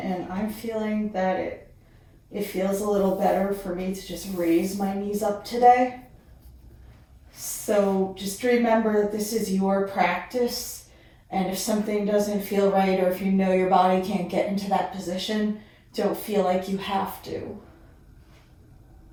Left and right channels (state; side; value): identical; both; correlation 1.00